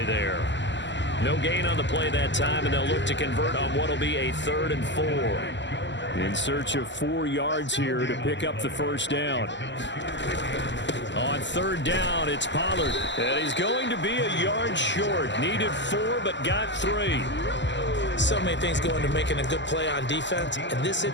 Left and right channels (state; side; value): late; right; 0.53 ms